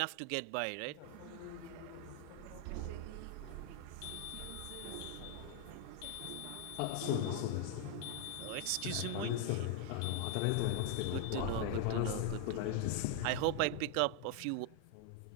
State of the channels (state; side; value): different; both; correlation 0.00